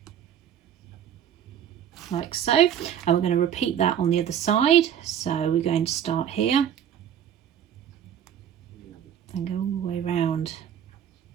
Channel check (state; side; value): quieter; left; 9.4 dB